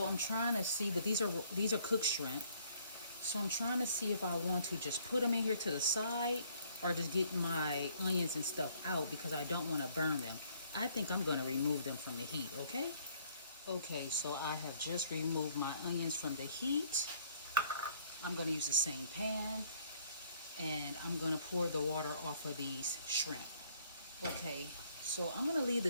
I'm trying to see, but these are cooked shrimp. So I'm trying to see if I want to just put them in here to the side or just get my onions and stuff out because I don't want to burn them. I think I'm going to remove them from the heat, okay? Okay, so I have just removed my onions from the heat. I'm going to use the same pan and I'm going to pour the water off of these shrimp. Okay, so I'm going to leave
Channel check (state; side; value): inverted; both; correlation -0.63